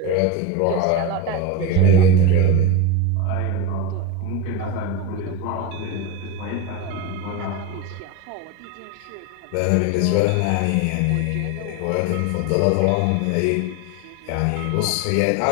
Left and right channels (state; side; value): different; both; correlation 0.06